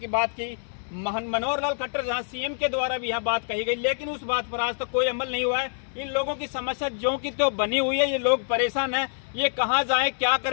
बात की। मनोहर लाल खट्टर, जहाँ सीएम के द्वारा भी यहाँ बात कही गई, लेकिन उस बात पर आज तक कोई अमल नहीं हुआ है। इन लोगों की समस्या जो की तो बनी हुई है। ये लोग परेशान हैं, ये कहाँ जाएं, क्या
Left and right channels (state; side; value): silent; right; 61 dB below the other